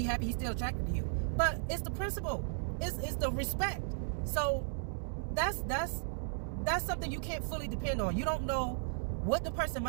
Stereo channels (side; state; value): left; silent; digital silence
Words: happy he's still attracted to you. But it's the principle. It's the respect. So that's something you can't fully depend on. You don't know what the person's